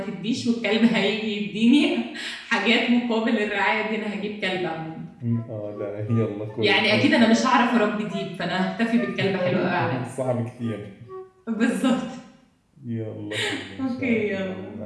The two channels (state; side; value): identical; both; correlation 1.00